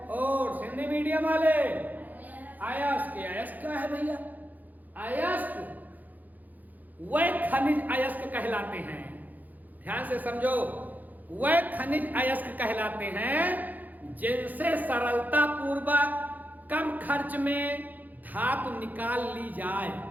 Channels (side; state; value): left; late; 0.082 ms